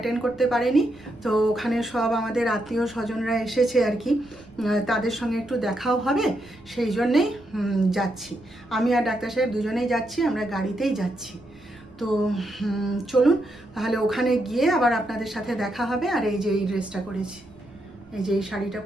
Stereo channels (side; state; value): right; noise; rumble, 26 dB below the sound